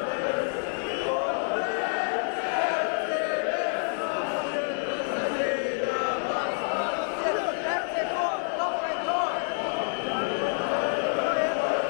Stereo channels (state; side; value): silent; right; digital silence